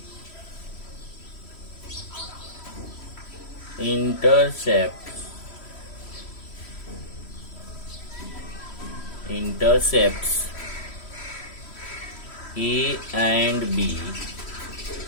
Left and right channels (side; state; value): right; late; 3.1 ms